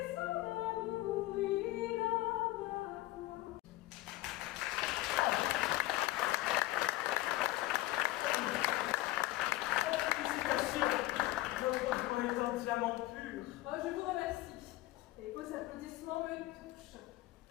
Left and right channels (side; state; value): right; quieter; 17.5 dB